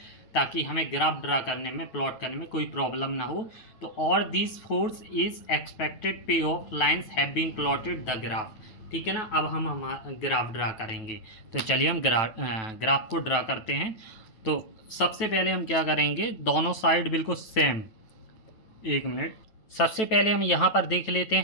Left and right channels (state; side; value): late; right; 9.2 ms